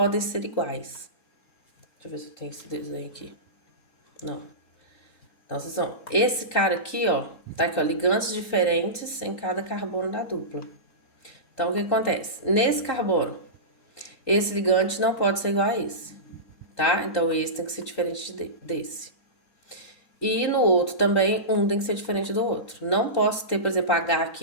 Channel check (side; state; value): right; late; 3.8 ms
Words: ser iguais. Deixa eu ver se eu tenho esse desenho aqui. Não. Então, esse cara aqui, ó, tá aqui, ó, ligantes diferentes em cada carbono da dupla. Então, o que acontece? Nesse carbono, esse ligante não pode ser igual a esse, tá? Então, esse tem que ser diferente desse. E no outro também, um tem que ser diferente do outro. Não posso ter, por exemplo, H